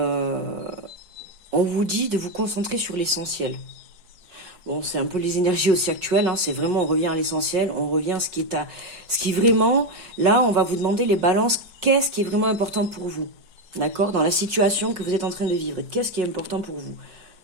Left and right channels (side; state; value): left; late; 5.5 ms